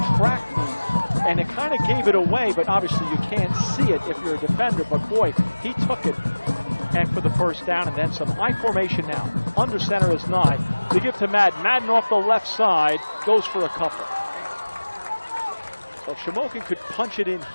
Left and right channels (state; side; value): inverted; both; correlation -1.00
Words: track meet, and it kind of gave it away. But obviously, you can't see it if you're a defender. But boy, he took it, and for the first down, and then some. I formation now. Under center is Nye. They give to Madden. Madden off the left side goes for a couple. So if Shamokin could punch it in